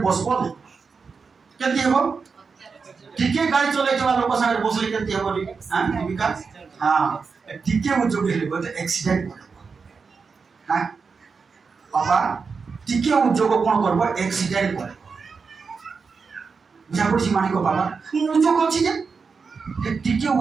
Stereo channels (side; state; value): left; quieter; 5.1 dB